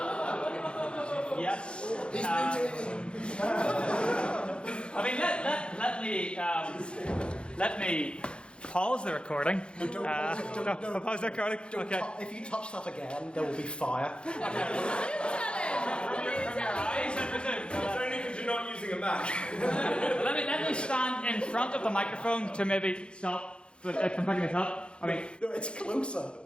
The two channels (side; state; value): right; late; 0.056 ms